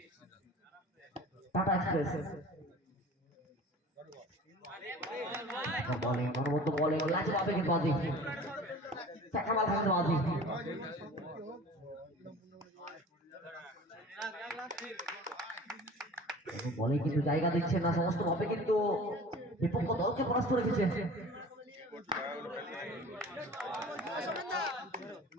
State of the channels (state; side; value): normal; both; correlation 0.42